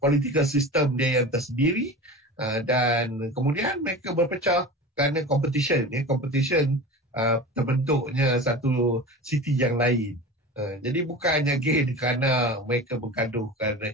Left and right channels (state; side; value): normal; both; correlation 0.33